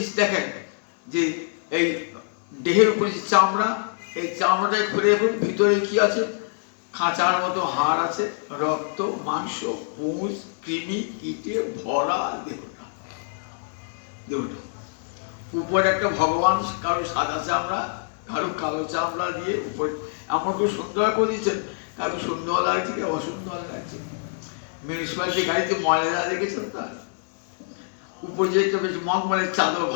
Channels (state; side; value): silent; right; digital silence